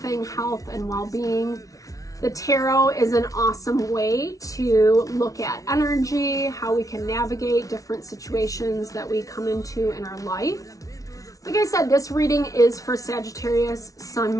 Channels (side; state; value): right; late; 0.17 ms